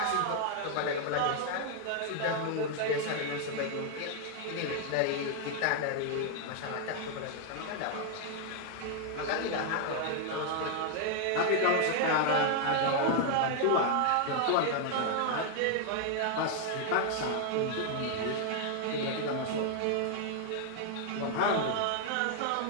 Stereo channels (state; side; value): different; both; correlation 0.00